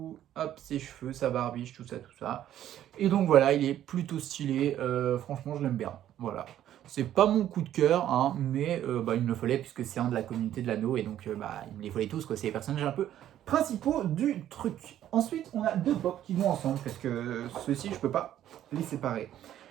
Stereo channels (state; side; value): quieter; left; 11.7 dB